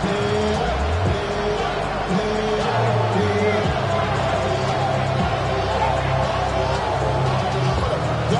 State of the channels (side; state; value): both; identical; correlation 1.00